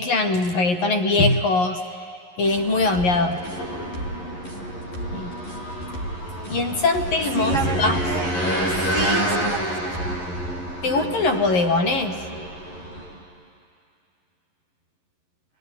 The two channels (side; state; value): right; late; 11 ms